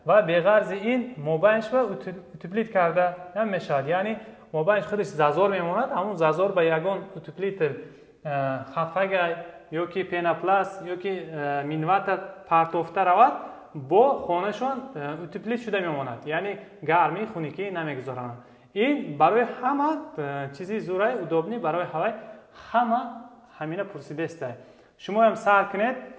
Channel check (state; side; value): identical; both; correlation 1.00